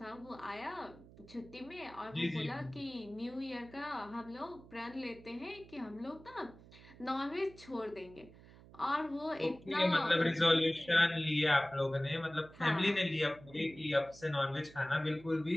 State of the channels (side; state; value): right; noise; hum, 21 dB below the sound